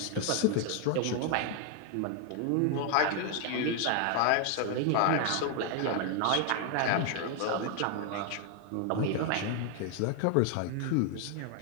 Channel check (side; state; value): both; different; correlation 0.01